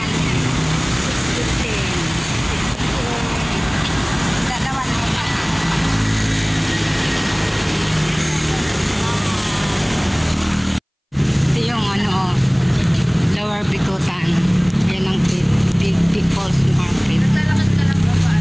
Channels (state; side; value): identical; both; correlation 1.00